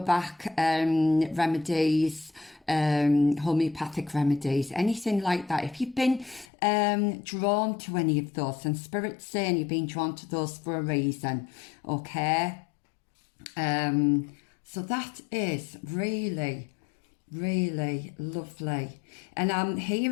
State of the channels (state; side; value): drops out; right; at 6.5 s